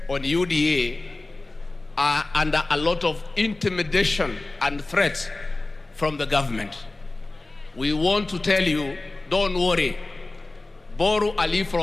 on UDA are under a lot of intimidation and threats from the government. We want to tell you, don't worry. Borrow a leaf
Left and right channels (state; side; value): quieter; right; 3.0 dB